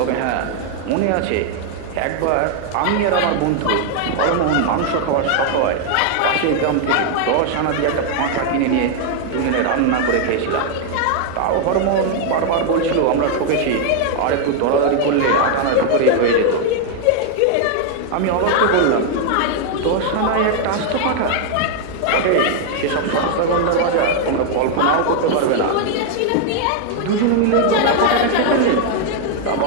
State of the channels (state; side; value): different; both; correlation 0.00